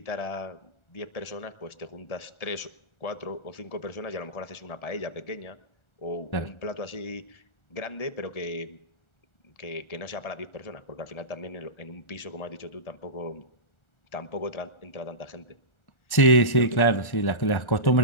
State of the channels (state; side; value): late; right; 1.4 ms